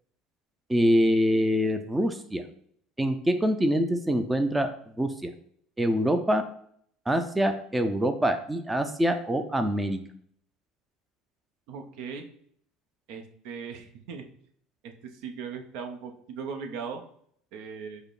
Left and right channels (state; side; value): normal; both; correlation 0.85